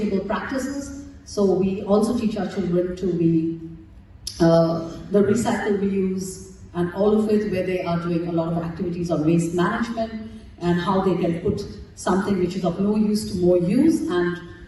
practices. So we also teach our children to be the recycle, reuse, and all of it, where they are doing a lot of activities on waste management and how they can put something which is of no use to more use, and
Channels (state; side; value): identical; both; correlation 1.00